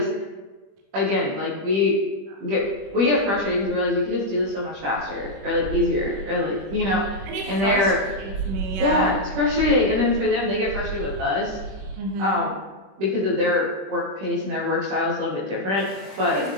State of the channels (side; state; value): left; late; 20 ms